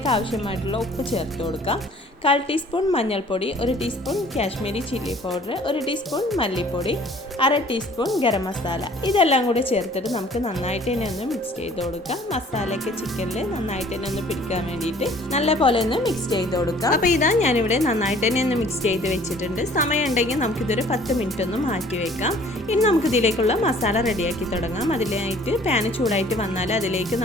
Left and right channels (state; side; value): normal; both; correlation 0.53